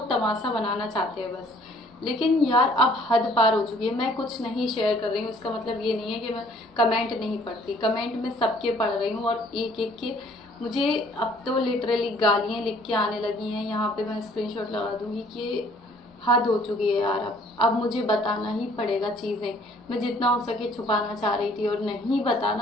तमाशा बनाना चाहते हैं बस। लेकिन यार अब हद पार हो चुकी है। मैं कुछ नहीं शेयर कर रही हूँ, इसका मतलब ये नहीं है कि मैं कमेंट नहीं पढ़ती। कमेंट में सबके पढ़ रही हूँ और एक एक के मुझे अब तो लिटरली गालियाँ लिख के आने लगी हैं। यहाँ पे मैं स्क्रीनशॉट लगा दूंगी कि हद हो चुकी है यार। अब मुझे बताना ही पड़ेगा चीज़ें। मैं जितना हो सके छुपाना चाह रही थी और नहीं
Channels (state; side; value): normal; both; correlation 0.58